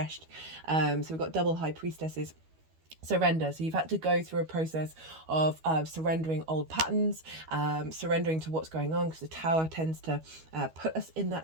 So we've got double high priestesses. Surrender. So you've had to go through a process of surrendering old patterns, surrendering to what's going on, because the tower tends to put us in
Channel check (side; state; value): left; late; 12 ms